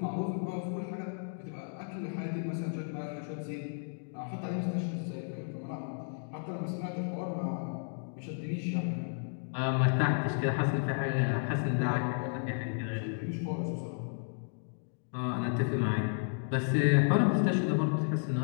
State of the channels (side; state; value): right; silent; digital silence